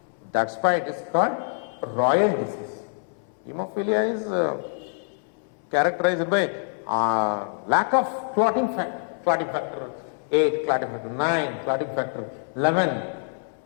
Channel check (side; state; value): right; silent; 61 dB below the other